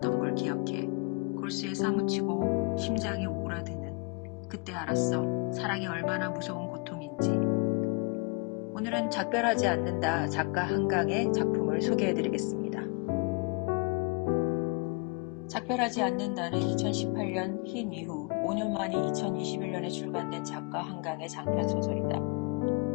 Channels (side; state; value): right; quieter; 29.8 dB